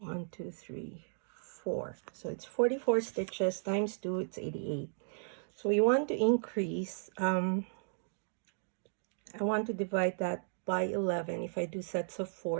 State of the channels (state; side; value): silent; left; digital silence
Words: 2, 3, 4. So it's 44 stitches times 2, it's 88. So we want to increase, I want to divide that by 11. If I do sets of